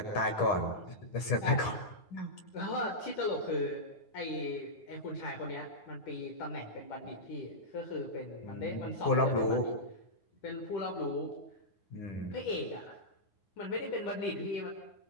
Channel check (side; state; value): right; late; 10 ms